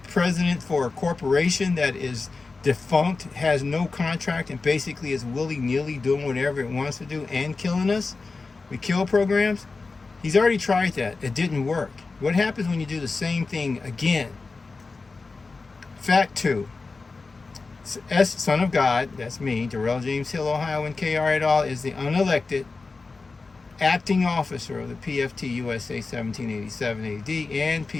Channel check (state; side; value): quieter; right; 4.0 dB